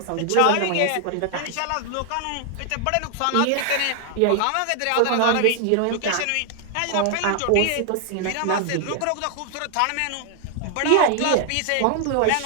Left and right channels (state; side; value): different; both; correlation 0.00